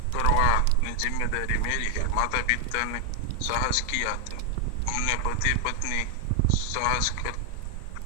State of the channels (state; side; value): different; both; correlation 0.00